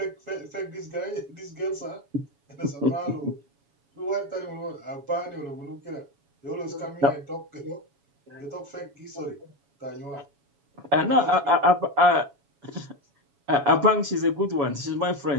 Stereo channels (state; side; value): late; left; 7.0 ms